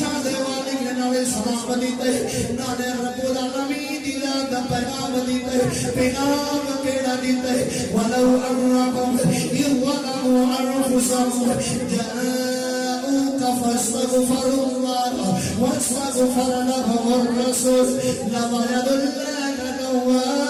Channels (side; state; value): both; identical; correlation 1.00